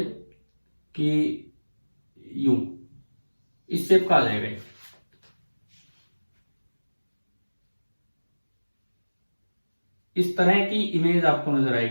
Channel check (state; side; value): inverted; both; correlation -1.00